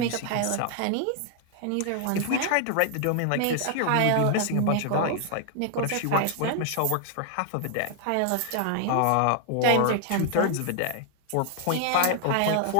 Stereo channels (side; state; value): both; different; correlation 0.00